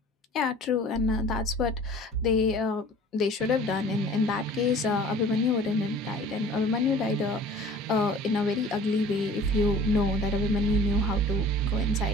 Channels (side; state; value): both; normal; correlation 0.47